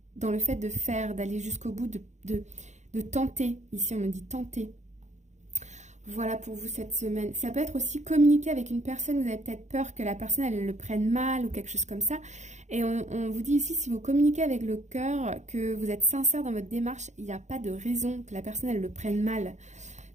le fait de faire, d'aller jusqu'au bout, de tenter. Ici, on me dit tenter. Voilà pour vous cette semaine. Ça peut être aussi communiquer avec une personne. Vous avez peut-être peur que la personne, elle le prenne mal ou quelque chose comme ça. Et on vous dit ici, si vous communiquez avec le cœur, que vous êtes sincère dans votre démarche, il n'y a pas de raison que la personne, elle le prenne mal.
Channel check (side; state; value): left; late; 0.34 ms